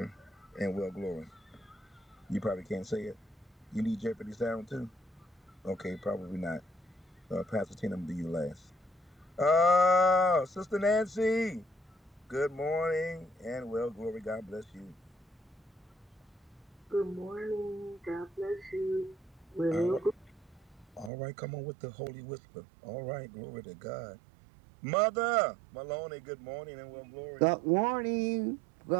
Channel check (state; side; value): drops out; left; at 21.1 s